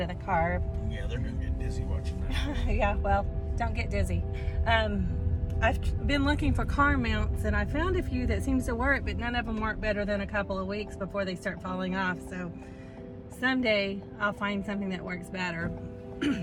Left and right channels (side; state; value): both; identical; correlation 1.00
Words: of the car. Yeah, they're gonna get dizzy watching that. Yeah, well, don't get dizzy. I've been looking for car mounts, and I found a few that seems to work, but none of them work better than a couple of weeks before they start falling off. So someday I'll find something that works better.